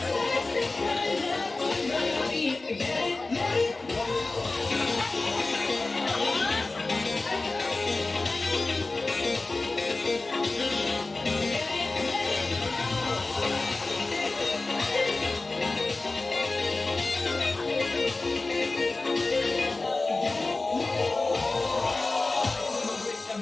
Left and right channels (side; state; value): right; quieter; 3.3 dB